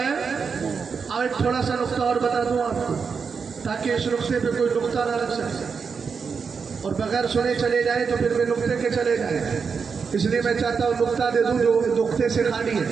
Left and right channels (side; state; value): left; quieter; 5.7 dB